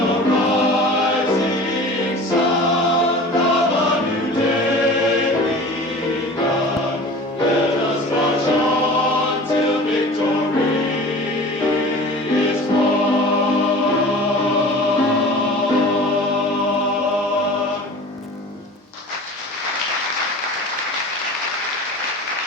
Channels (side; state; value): both; normal; correlation 0.39